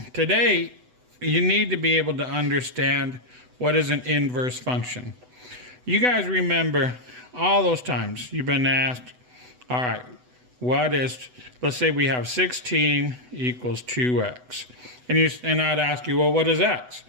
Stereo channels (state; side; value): late; left; 8.0 ms